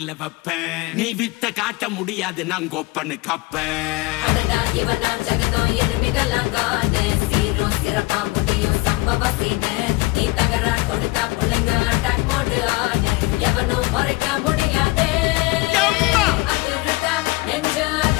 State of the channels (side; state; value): right; quieter; 22.5 dB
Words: வைப்பேன். நீ வித்த காட்ட முடியாது நான் கோப்பன்னு கப்பேன். ஜகதம் எருமிகளாங்கானே சீரும் சிறப்பா முடியும் சம்பவ சீனே. நீ தகரா கொடுத்தா பிள்ளைங்க அட்டாக் மோடு ஆனே எவனும் மறைக்க முடியாதே. அதிருதா நெஞ்சு